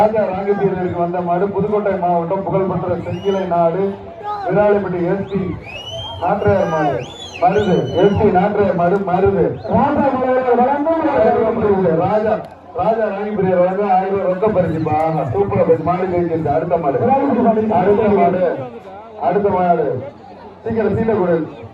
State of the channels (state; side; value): identical; both; correlation 1.00